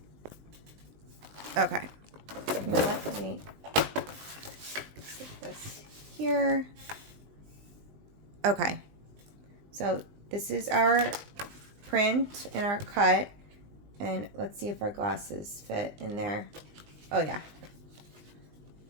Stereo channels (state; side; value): late; left; 19 ms